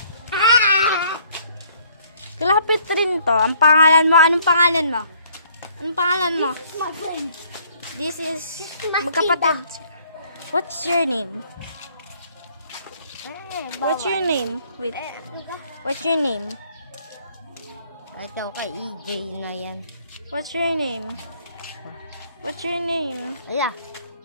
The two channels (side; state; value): both; inverted; correlation -0.62